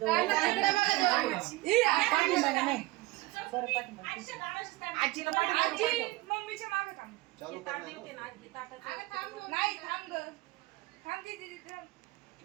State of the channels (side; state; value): left; quieter; 20.6 dB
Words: दादा, इकडे बघा दोन. पाठीमागे नाही. बरं, पाठीमागे. आजीच्या दाराशी थांब. आजीला पाठीमागे आजी पाठव. मम्मीच्या मागे थांब. चालू ते ताट कर ना. देते ना, आजी ताटाचं. अगं थांब दोन नाही मिनिटं. थांब ग. थांब दीदी थांब.